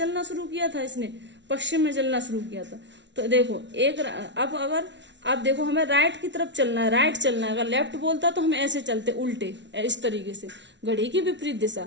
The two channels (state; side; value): late; left; 0.52 ms